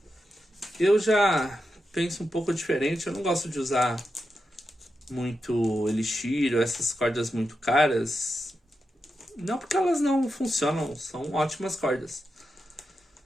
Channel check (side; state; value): both; normal; correlation 0.88